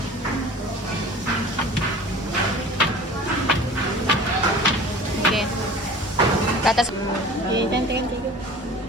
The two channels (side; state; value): both; normal; correlation 0.42